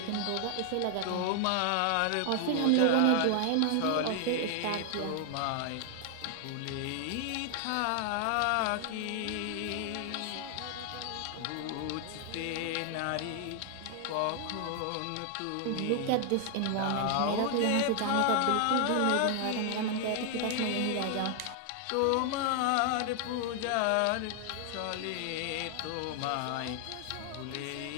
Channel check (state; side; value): different; both; correlation 0.00